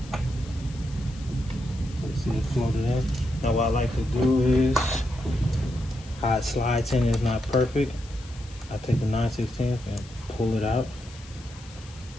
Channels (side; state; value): left; noise; hiss, 21 dB below the sound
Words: you see it floated in. Now what I like to do is how it slides in is not perfect. I take the 9/16 and pull it out.